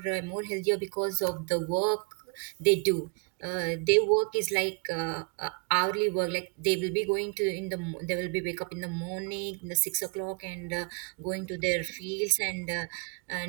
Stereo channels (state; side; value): quieter; left; 34.8 dB